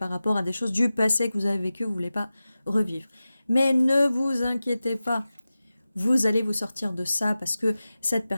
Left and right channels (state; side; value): inverted; both; correlation -0.95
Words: rapport à des choses du passé que vous avez vécues, vous ne voulez pas revivre. Mais ne vous inquiétez pas, vous allez vous sortir de ça parce que cette